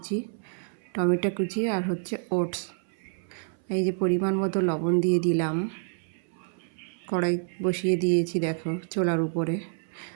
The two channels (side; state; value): left; silent; 59 dB below the other